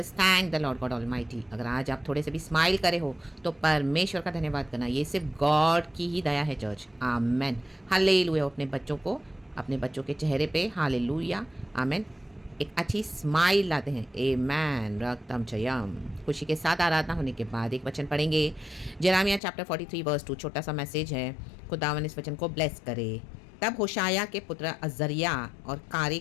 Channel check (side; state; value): right; drops out; at 19.4 s